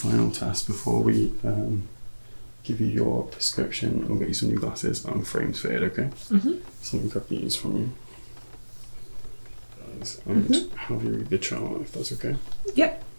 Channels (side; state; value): both; inverted; correlation -1.00